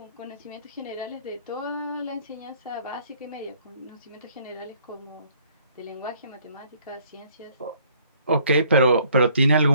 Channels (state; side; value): inverted; both; correlation -0.61